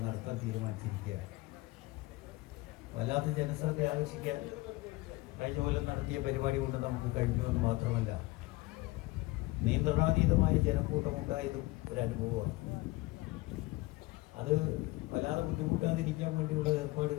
നടത്താൻ തീരുമാനിച്ചിരിക്കുകയാണ്. വല്ലാത്ത ജനശ്രദ്ധ ആകർഷിക്കാൻ കഴിഞ്ഞ കൊല്ലം നടത്തിയ പരിപാടി കൊണ്ട് നമുക്ക് കഴിഞ്ഞു എന്ന് മാത്രമല്ല, നിയന്ത്രണാതീതമായ ജനക്കൂട്ടമുണ്ടായതും ഒരു അനുഭവമാണ്. അത് വല്ലാതെ ബുദ്ധിമുട്ടാതിരിക്കാൻ വേണ്ടിയുള്ള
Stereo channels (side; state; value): right; quieter; 20.5 dB